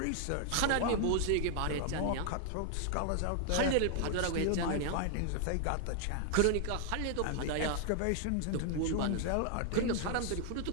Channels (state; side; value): different; both; correlation 0.00